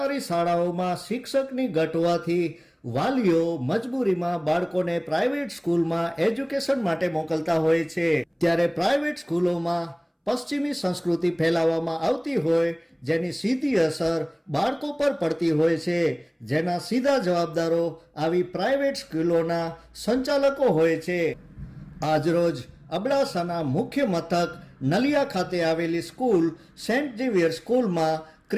શાળાઓમાં શિક્ષકની ઘટ હોવાથી વાલીઓ મજબૂરીમાં બાળકોને પ્રાઇવેટ સ્કૂલમાં એજ્યુકેશન માટે મોકલતા હોય છે। ત્યારે પ્રાઇવેટ સ્કૂલોમાં પશ્ચિમી સંસ્કૃતિ ફેલાવવામાં આવતી હોય જેની સીધી અસર બાળકો પર પડતી હોય છે, જેના સીધા જવાબદારો આવી પ્રાઇવેટ સ્કૂલોના સંચાલકો હોય છે। આજરોજ અબડાસાના મુખ્ય મથક નલિયા ખાતે આવેલી સ્કૂલ સેન્ટ ઝેવિયર સ્કૂલમાં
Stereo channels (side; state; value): both; identical; correlation 1.00